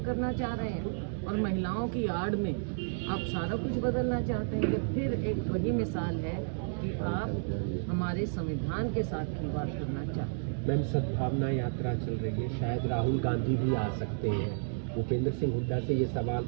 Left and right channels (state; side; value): silent; left; digital silence